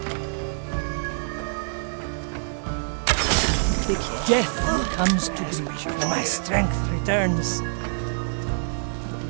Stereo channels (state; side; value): silent; left; digital silence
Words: Death comes to me when my strength returns.